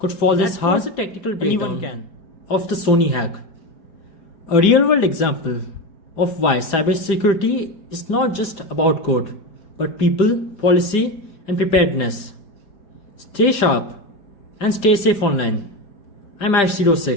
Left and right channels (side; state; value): right; late; 5.0 ms